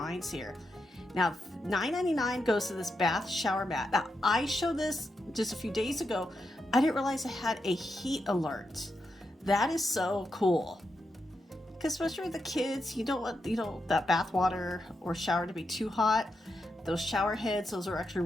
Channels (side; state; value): both; normal; correlation 0.85